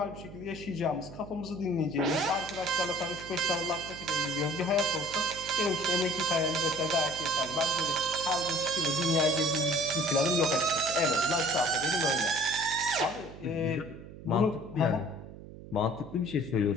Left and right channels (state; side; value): noise; right; hum, 15 dB below the sound